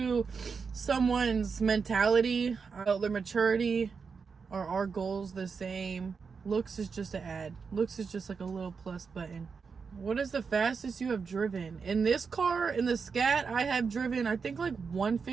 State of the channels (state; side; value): quieter; left; 5.4 dB